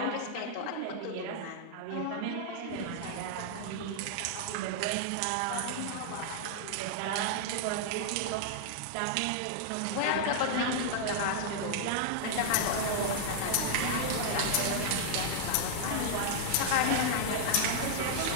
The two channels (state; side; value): different; both; correlation -0.01